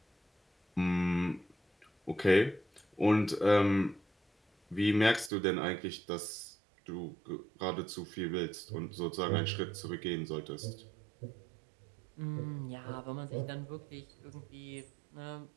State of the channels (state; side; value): drops out; left; at 5.3 s